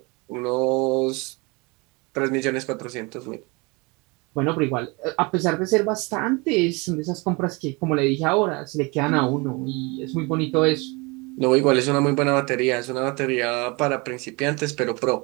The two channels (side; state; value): left; quieter; 27.4 dB